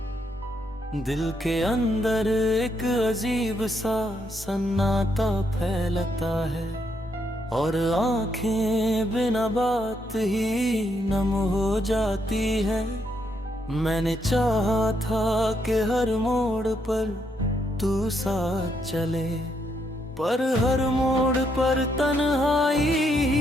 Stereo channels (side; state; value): both; normal; correlation 0.76